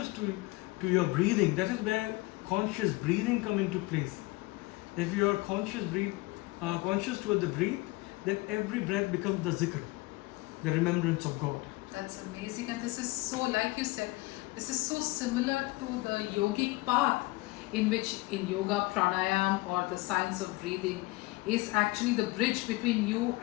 to your breathing, that is where conscious breathing come into place. If you are conscious toward the breath, then every breath becomes the zikr, the remembrance of God. That's amazing, and this is so, like you said, This is so similar to the yogic path, in which in yoga, pranayam, or the science of breathing, is actually the bridge between you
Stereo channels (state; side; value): quieter; right; 22.2 dB